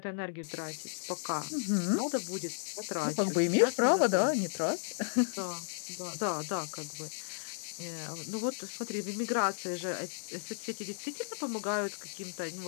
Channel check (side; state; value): right; silent; digital silence